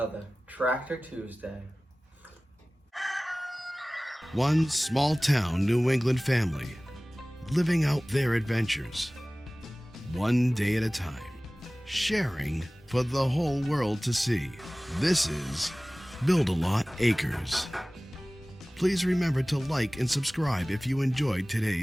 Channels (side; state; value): both; normal; correlation 0.98